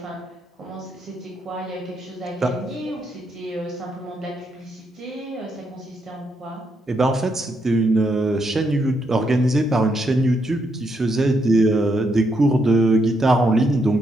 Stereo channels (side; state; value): both; normal; correlation 0.78